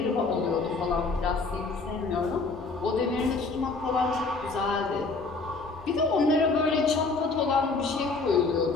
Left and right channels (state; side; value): quieter; right; 3.9 dB